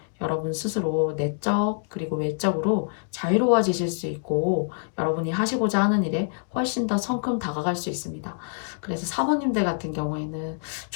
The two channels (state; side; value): silent; right; digital silence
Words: 여러분 스스로 내적 그리고 외적으로 자유로워지실 수 있고 여러분이 하시고자 하는 일에 훨씬 더 성큼 다가갈 수 있습니다. 그래서 사모님들 같은 경우에는